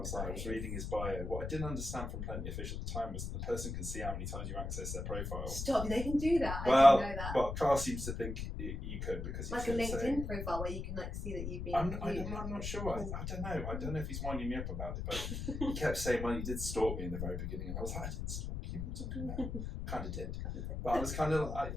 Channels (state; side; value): noise; left; rumble, 4 dB below the sound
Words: reading his bio. What I didn't understand from Plenty of Fish at the time was that the person can see how many times you access their profile. Stop! They can do that. Well, I didn't know that. Well, Carl seems to think you could, because like a LinkedIn profile where you can see that you've been. I'm not sure. I don't know. I don't know if he's winding me up about it, but he kept saying, well, he did stalk me in the very beginning, and I was like, I didn't stalk you. Kind of did, but I was kind of,